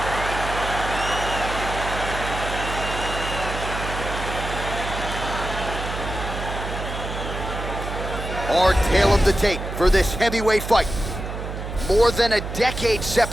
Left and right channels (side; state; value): right; noise; hum, 7 dB below the sound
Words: Our tale of the tape for this heavyweight fight. More than a decade